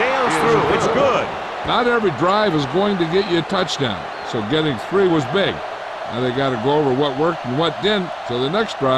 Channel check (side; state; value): both; identical; correlation 1.00